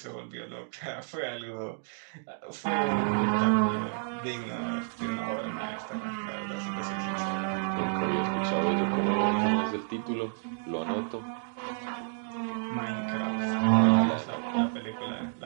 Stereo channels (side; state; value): left; silent; digital silence